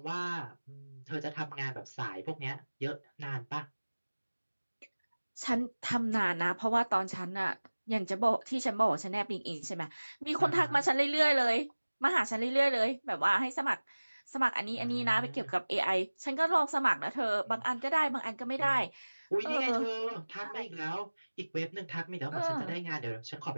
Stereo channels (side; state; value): both; inverted; correlation -1.00